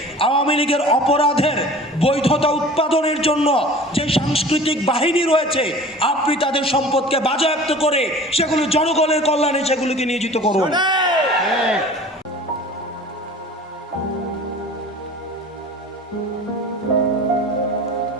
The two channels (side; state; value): both; normal; correlation 0.42